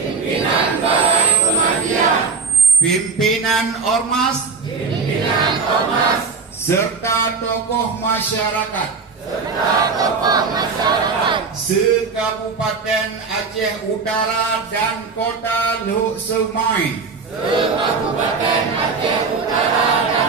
Pimpinan Ormas. Serta tokoh masyarakat. Se-Kabupaten Aceh Utara dan Kota Luk Semai.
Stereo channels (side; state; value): left; quieter; 4.8 dB